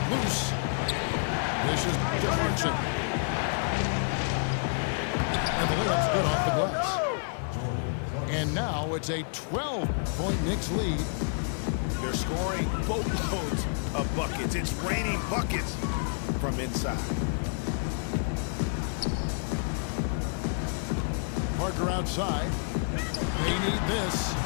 loose. This is Clarkson. And the layup's good off the glass. And now it's a 12-point Knicks lead. They're scoring boatloads of buckets. It's raining buckets from inside. Parker outside. They need this.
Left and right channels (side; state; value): right; silent; 59 dB below the other